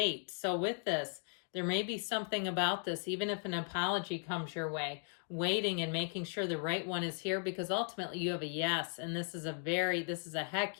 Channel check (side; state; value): right; silent; 53 dB below the other